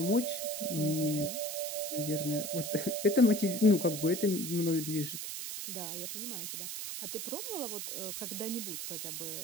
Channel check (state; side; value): noise; right; hiss, 5 dB below the sound